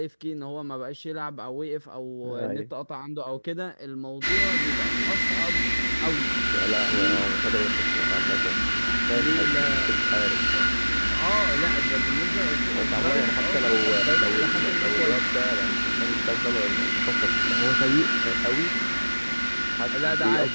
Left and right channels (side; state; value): both; inverted; correlation -1.00